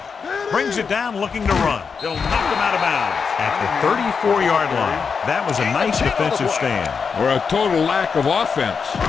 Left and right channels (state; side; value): quieter; right; 5.7 dB